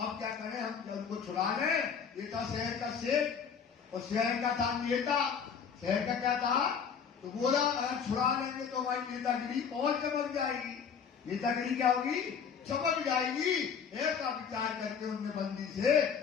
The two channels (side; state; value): right; quieter; 6.8 dB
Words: क्या करें, हम उनको छुड़ा लें। ये था शहर का सेठ और शहर का था नेता। शहर का क्या था? तो बोला अगर छुड़ा लेंगे तो हमारी नेतागिरी और चमक जाएगी। नेतागिरी क्या होगी? चमक जाएगी। ऐसा विचार करके उनने बंदी से